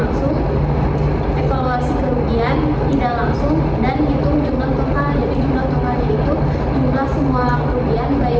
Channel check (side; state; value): both; identical; correlation 1.00